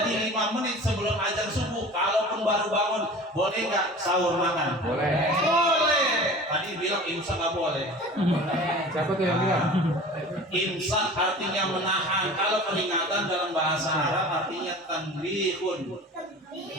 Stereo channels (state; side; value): normal; both; correlation 0.39